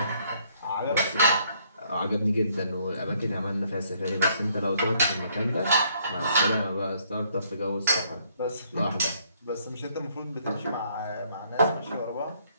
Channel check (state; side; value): inverted; both; correlation -0.67